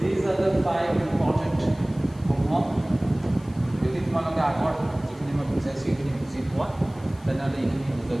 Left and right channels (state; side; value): noise; left; hiss, 27 dB below the sound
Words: these are the 5 important homework. যদি তোমালোকে আগত যিখিনি মই বুজাইছোঁ এইখিনি বুজি পোৱা তেনেহ'লে এইখিনি